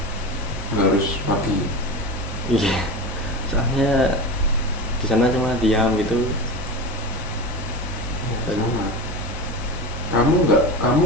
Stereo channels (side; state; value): both; normal; correlation 0.26